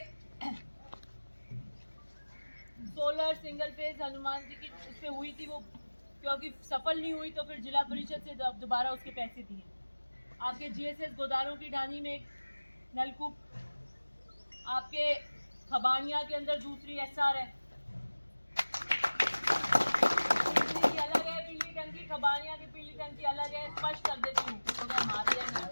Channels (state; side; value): inverted; both; correlation -1.00